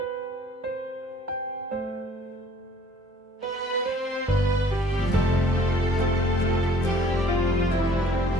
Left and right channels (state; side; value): normal; both; correlation 0.55